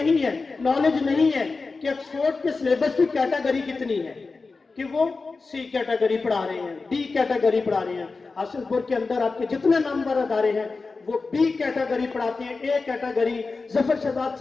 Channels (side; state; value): right; quieter; 4.1 dB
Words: है, नॉलेज नहीं है कि ऑक्सफोर्ड के सिलेबस की कैटेगरी कितनी है, कि वो सी कैटेगरी पढ़ा रहे हैं, डी कैटेगरी पढ़ा रहे हैं। हासिलपुर के अंदर आपके जितने नामवर अदारे हैं वो बी कैटेगरी पढ़ाते हैं, ए कैटेगरी। जफर शहजाद